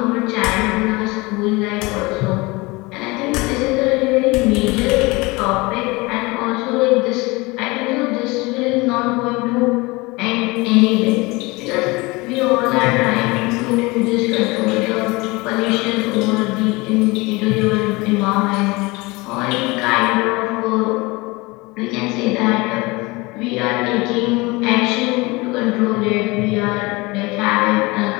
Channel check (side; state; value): right; quieter; 23.9 dB